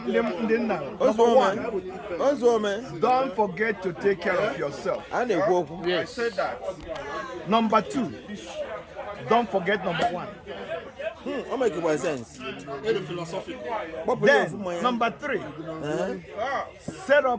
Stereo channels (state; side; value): identical; both; correlation 1.00